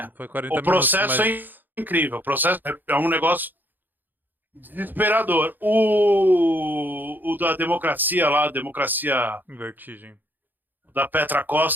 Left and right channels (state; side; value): late; left; 0.088 ms